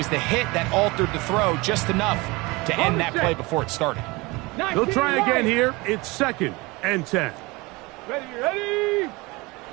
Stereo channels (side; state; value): left; quieter; 23.9 dB